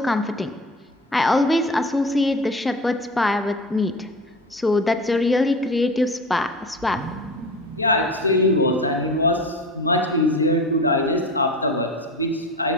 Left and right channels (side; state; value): both; normal; correlation 0.32